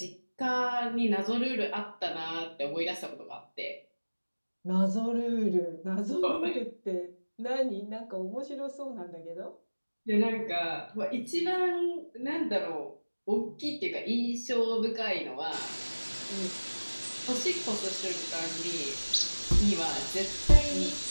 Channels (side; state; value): both; inverted; correlation -1.00